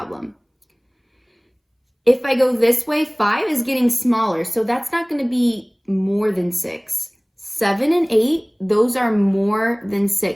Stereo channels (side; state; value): both; identical; correlation 1.00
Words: If I go this way, 5 is getting smaller, so that's not going to be more than 6. 7 and 8, those are more than